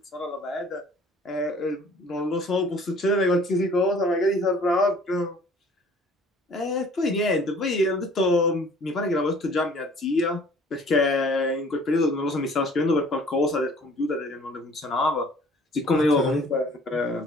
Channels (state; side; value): normal; both; correlation 0.53